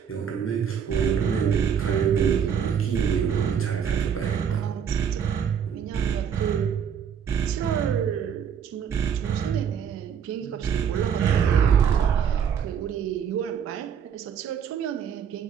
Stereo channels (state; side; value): quieter; left; 7.8 dB